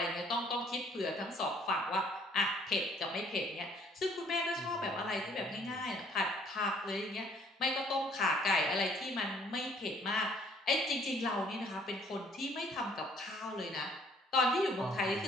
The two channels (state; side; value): normal; both; correlation 0.60